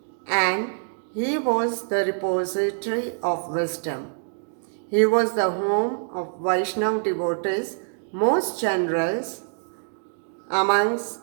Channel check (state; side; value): silent; left; digital silence